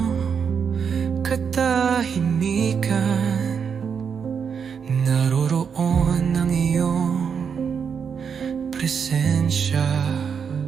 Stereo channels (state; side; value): quieter; left; 6.7 dB